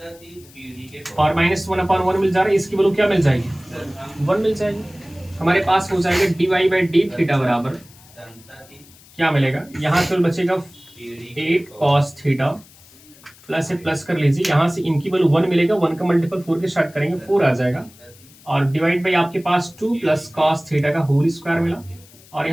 और -1/1 मिल जा रहा है, इसकी वैल्यू क्या मिल जाएगी 1 मिल जाएगी, हमारे पास हो जाएगा dy/d थीटा बराबर क्या मिलेगा, यहाँ से बचेगा 8 cos थीटा प्लस से प्लस कर लीजिए, यहाँ से इनकी वैल्यू 1 मिलेगा, 1 का मल्टीपल 4 के स्टार्ट करेंगे 4 आ जाएगा और डिवाइड बाई आपके पास 2 प्लस cos थीटा का होल स्क्वायर मिला और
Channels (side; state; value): left; noise; hiss, 25 dB below the sound